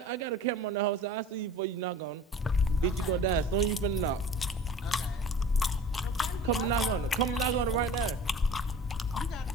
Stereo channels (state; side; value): normal; both; correlation 0.42